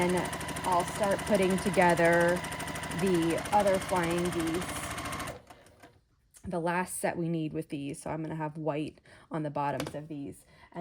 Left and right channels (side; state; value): both; identical; correlation 1.00